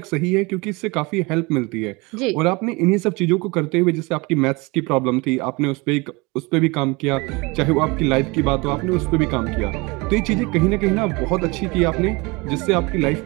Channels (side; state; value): left; quieter; 25.9 dB